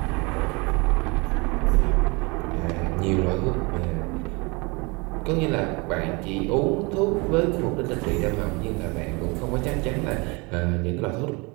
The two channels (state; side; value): quieter; left; 27.9 dB